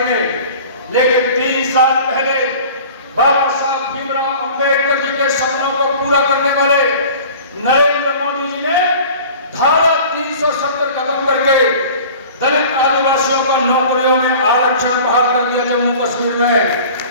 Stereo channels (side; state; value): both; inverted; correlation -0.43